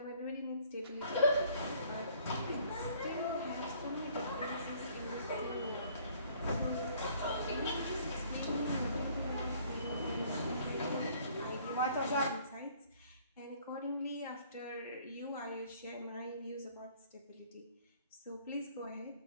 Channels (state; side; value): inverted; both; correlation -0.59